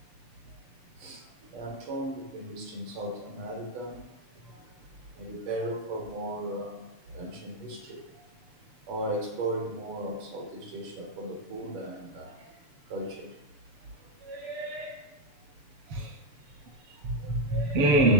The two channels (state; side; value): late; left; 6.9 ms